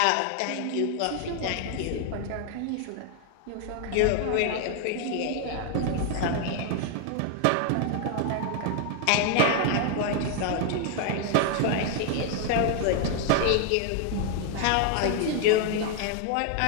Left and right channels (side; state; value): both; different; correlation 0.00